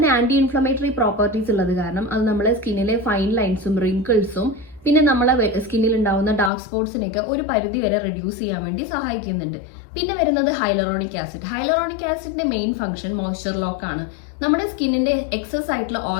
ആന്റി ഇൻഫ്ലമേറ്ററി പ്രോപ്പർട്ടീസ് ഉള്ളത് കാരണം അത് നമ്മളെ സ്കിന്നിലെ ഫൈൻ ലൈൻസും റിങ്കിൾസും പിന്നെ നമ്മളെ സ്കിന്നിൽ ഉണ്ടാവുന്ന ഡാർക്ക് സ്പോട്സിനെയൊക്കെ ഒരു പരിധി വരെ റെഡ്യൂസ് ചെയ്യാൻ വേണ്ടി സഹായിക്കുന്നുണ്ട്. പിന്നെ വരുന്നത് ഹൈലറോണിക് ആസിഡ്. ഹൈലറോണിക് ആസിഡിന്റെ മെയിൻ ഫംഗ്ഷൻ മോയ്സ്ചർ ലോക്ക് ആണ്. നമ്മുടെ സ്കിന്നിന്റെ എക്സസ് ആയിട്ടുള്ള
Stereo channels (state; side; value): drops out; right; at 6.5 s